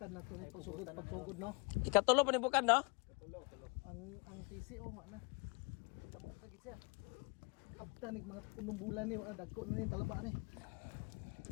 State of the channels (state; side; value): quieter; right; 31.7 dB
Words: na to pagsugod no. Ikatulo pa ni bukan, no? Ang PCO nga na. Lamog na gid siya. Abtanig mga punong bulan ni dagko na ni talaba ni.